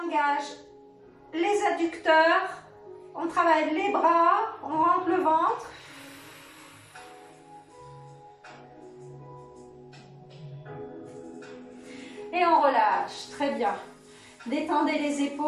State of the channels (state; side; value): identical; both; correlation 1.00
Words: engage les adducteurs. On travaille les bras. On rentre le ventre. Et on relâche. Très bien. Détendez les